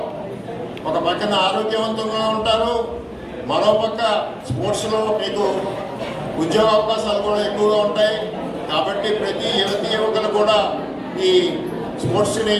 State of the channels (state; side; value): identical; both; correlation 1.00